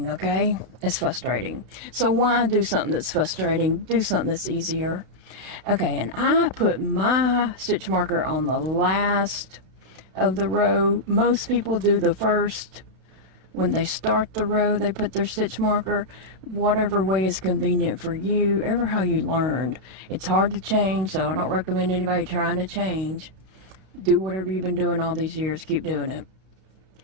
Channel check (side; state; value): left; late; 32 ms